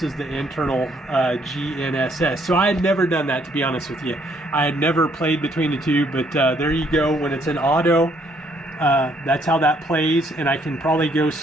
the internal GNSS. So I had never done that, to be honest with you. I had never played between the two, but there you go. When it's in auto, that's how that plays, and I can probably go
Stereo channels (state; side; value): normal; both; correlation 0.68